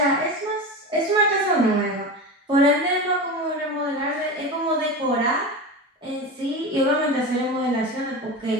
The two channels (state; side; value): normal; both; correlation 0.25